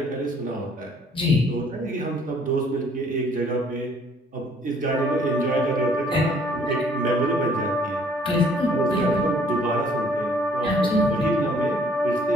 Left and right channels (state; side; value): normal; both; correlation 0.60